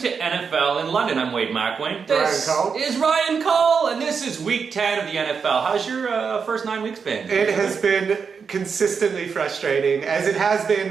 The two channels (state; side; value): quieter; left; 5.9 dB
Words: NFL in London. I'm Wade McElwain. This Ryan Cull. is Ryan Cull, and this is week 10 of the NFL. How's your first 9 weeks been? It has been consistently frustrating, as it has